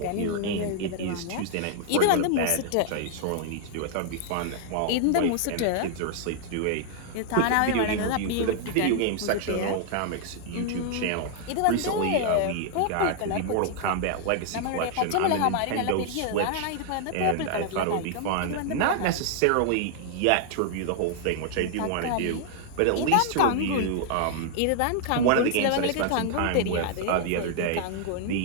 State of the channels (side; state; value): both; different; correlation -0.01